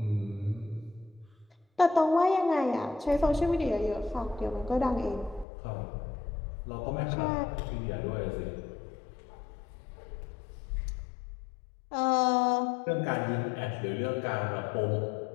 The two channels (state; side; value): drops out; right; at 5.5 s